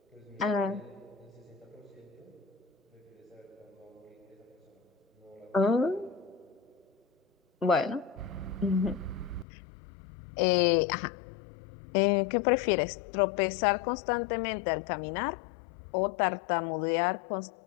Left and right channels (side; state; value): right; drops out; at 9.5 s